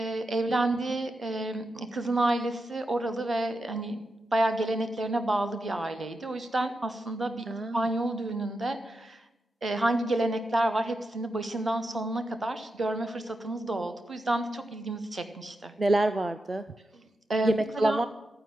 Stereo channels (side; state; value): both; normal; correlation 0.87